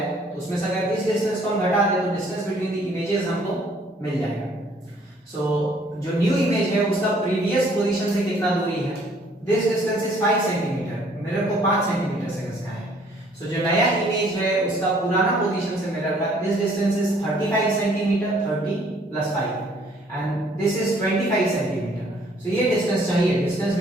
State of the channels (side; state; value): both; normal; correlation 0.61